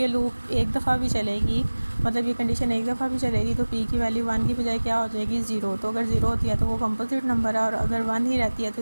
लूप एक दफ़ा भी चलेगी, मतलब ये कंडीशन एक दफ़ा भी चलेगी, तो पी की वैल्यू 1 की बजाय क्या हो जाएगी, 0। तो अगर 0 होती है तो वो कंपोजिट नंबर है, और अगर 1 ही रहती है तो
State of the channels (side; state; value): both; inverted; correlation -1.00